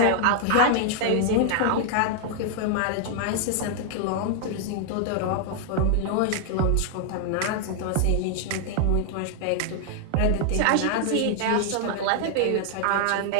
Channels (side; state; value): both; different; correlation 0.00